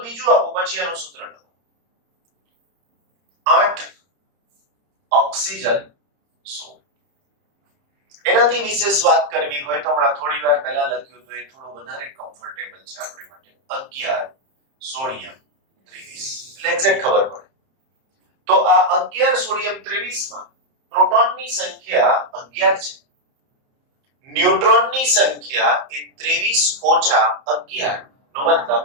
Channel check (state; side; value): late; left; 30 ms